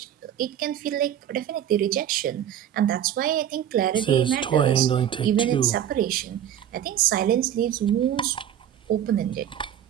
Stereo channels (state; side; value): quieter; left; 10.2 dB